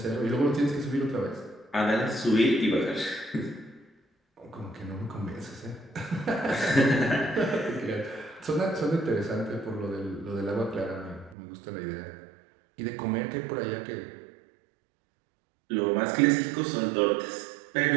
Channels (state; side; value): drops out; left; at 11.4 s